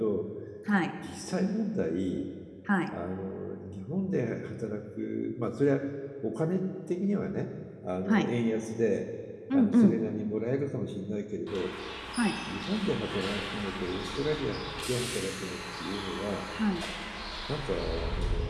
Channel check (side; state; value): both; identical; correlation 1.00